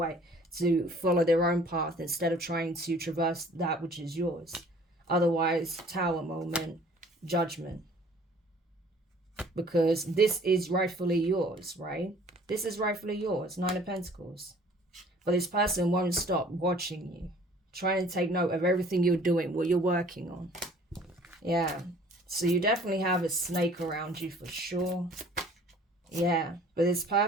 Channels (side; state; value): both; normal; correlation 0.53